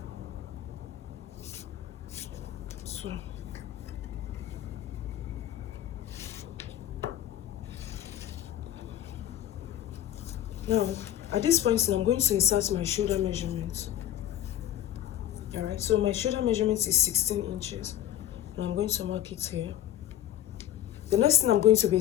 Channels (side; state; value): right; quieter; 12.0 dB